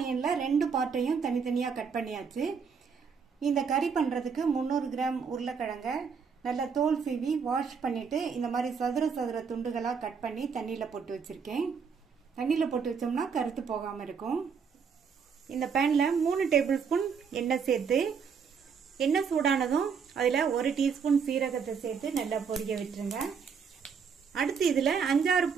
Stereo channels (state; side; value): quieter; left; 6.1 dB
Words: ரெண்டு பார்ட்டையும் தனித்தனியா கட் பண்ணியாச்சு. இந்த கறி பண்றதுக்கு 300 கிராம் உருளைக்கிழங்க நல்லா தோல் சீவி வாஷ் பண்ணிட்டு இந்த மாதிரி சதுர துண்டுகளா கட் பண்ணி தண்ணியில போட்டு வச்சிருக்கேன். தண்ணியில போட்டு வச்சோம்னா கருத்து போகாம இருக்கும். இந்த பேன்ல 3 டேபிள் ஸ்பூன் எண்ணெய் சேர்த்து எண்ணெய் சூடானதும் அதுல 1 டீஸ்பூன் சீரகத்தை சேர்த்து நல்லா பொரிய விட்டுருங்க. அடுத்து இதுல 5-6